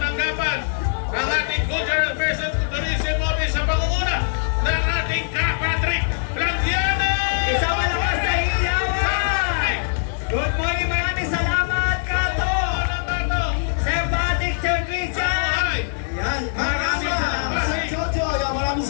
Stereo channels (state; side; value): silent; right; digital silence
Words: ng ating Cultural Affairs and Tourism Office sa pangunguna ng ating Patrick Blandiana! Isang malakas na iyawan! Good morning, maraming salamat, Kato! Sir Patrick, Sir Christian! Yan. Maraming salamat. Sir Jojo, yan, maraming